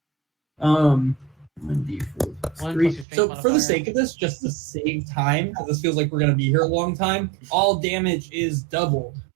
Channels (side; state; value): left; drops out; at 3.1 s